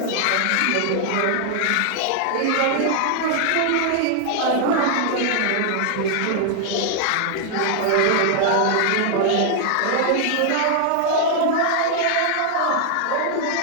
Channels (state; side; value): different; both; correlation 0.00